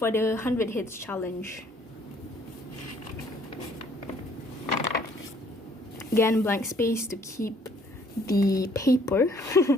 the 100 hits challenge. Again, blank space to keep the paper,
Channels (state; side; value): normal; both; correlation 0.61